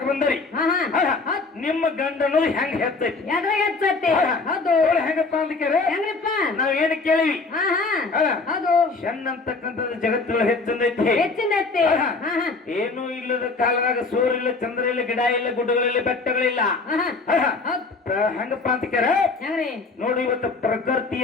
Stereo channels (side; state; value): right; quieter; 3.9 dB